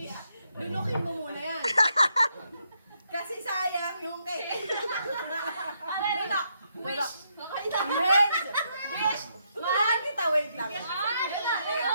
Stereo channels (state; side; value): inverted; both; correlation -0.77